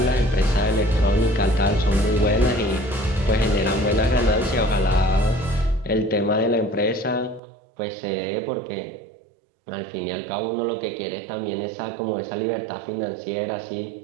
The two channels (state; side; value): drops out; left; at 7.4 s